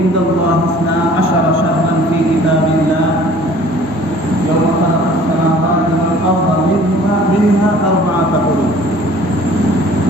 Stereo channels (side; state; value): both; normal; correlation 0.51